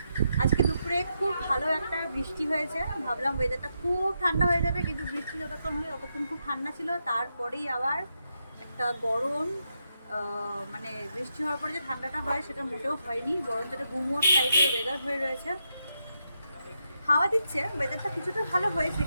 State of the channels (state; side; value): inverted; both; correlation -0.83